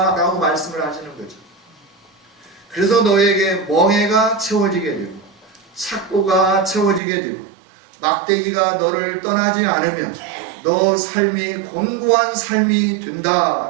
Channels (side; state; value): left; drops out; at 7.0 s